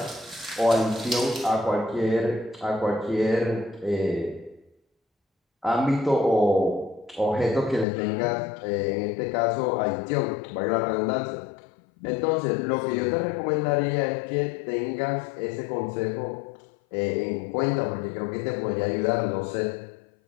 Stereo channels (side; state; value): right; drops out; at 7.9 s